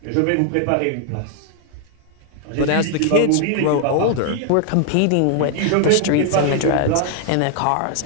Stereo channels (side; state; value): both; different; correlation 0.00